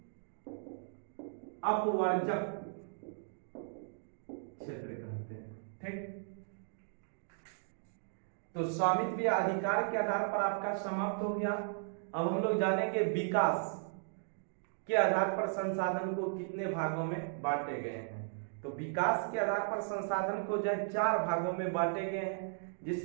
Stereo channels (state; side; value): silent; left; digital silence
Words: अपवर्जक क्षेत्र कहते हैं। ठीक, तो स्वामित्व या अधिकार के आधार पर आपका समाप्त हो गया। अब हम लोग जानेंगे विकास के आधार पर संसाधन को कितने भागों में बांटे गए हैं। तो विकास के आधार पर संसाधन को जो है 4 भागों में बांटे गए हैं,